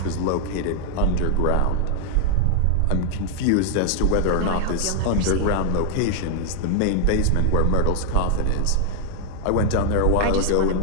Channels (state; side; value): different; both; correlation -0.01